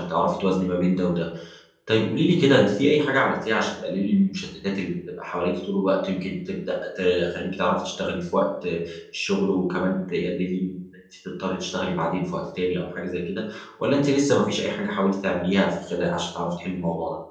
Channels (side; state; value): both; identical; correlation 1.00